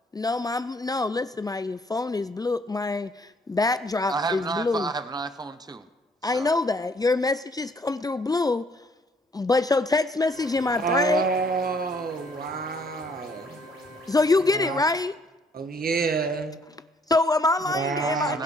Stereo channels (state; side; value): normal; both; correlation 0.64